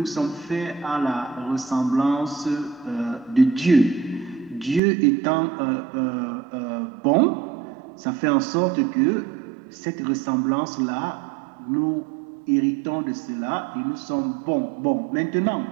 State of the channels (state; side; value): drops out; left; at 4.8 s